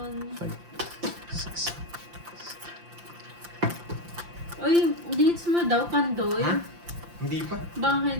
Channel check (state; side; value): late; left; 5.8 ms